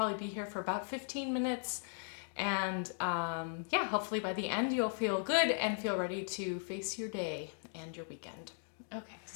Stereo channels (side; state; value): right; silent; 53 dB below the other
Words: be here for about 15 minutes. And yeah, hopefully by the end you'll feel good and feel ready to face your day and your weekend. Okay,